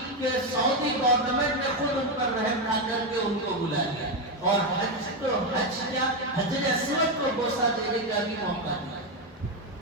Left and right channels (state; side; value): normal; both; correlation 0.08